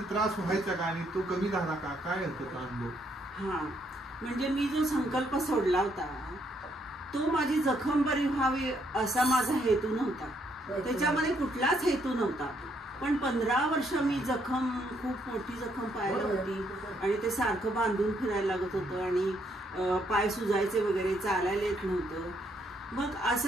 त्रास व्हायचा का आणि तो कमी झाला का, काय होतं तो अनुभव? म्हणजे मी जो संकल्प सोडला होता तो माझी जखम बरी व्हावी असा माझा हेतू नव्हता, त्याच्यामध्ये कुठलाच हेतू नव्हता. पण 15 वर्ष मी खूप मोठी जखम पायाला होती आणि ते सारखं बांधून फिरायला लागत होतं आणि पाय सुजायचे वगैरे, चालायला येत नव्हतं. मग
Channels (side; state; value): both; normal; correlation 0.72